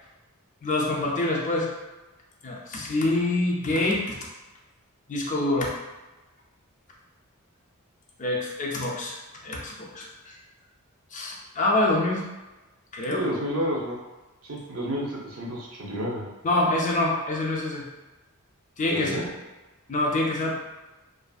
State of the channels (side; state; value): both; normal; correlation 0.23